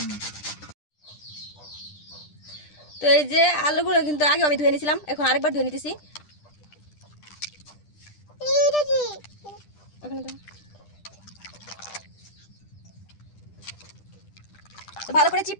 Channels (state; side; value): late; right; 10 ms